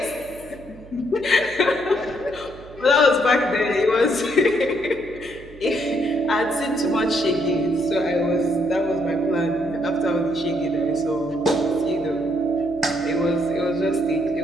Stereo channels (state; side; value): noise; right; hum, 20 dB below the sound